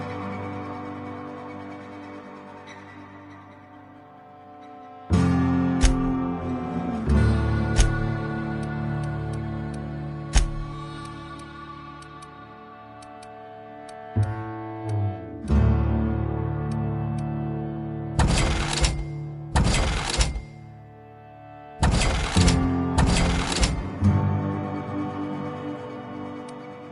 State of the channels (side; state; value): both; identical; correlation 1.00